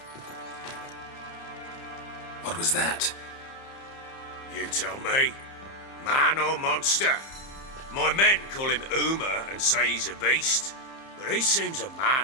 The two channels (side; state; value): right; late; 30 ms